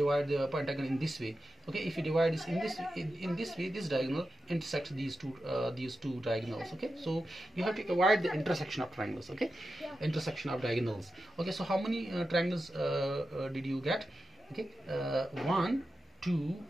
the pentagon in this way. Okay, if you divide this in this way, this diagonal intersects these two diagonals. Okay, so you have to avoid the intersection of triangles. Okay, intersection of diagonals. Okay, so how many triangles did you get? Okay, 1, 2,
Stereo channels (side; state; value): both; normal; correlation 0.91